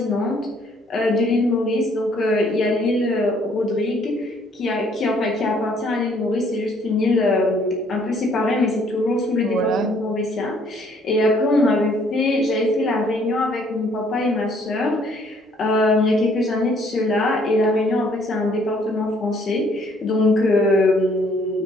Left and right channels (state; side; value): normal; both; correlation 0.63